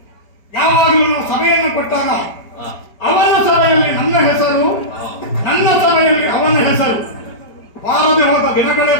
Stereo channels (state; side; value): late; right; 4.7 ms